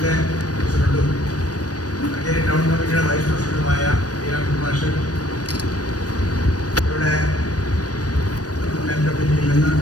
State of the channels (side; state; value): right; late; 0.68 ms